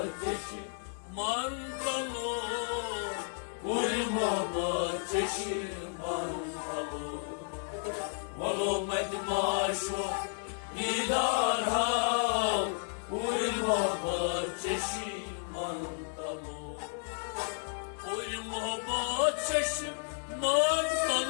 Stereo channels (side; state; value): right; silent; 56 dB below the other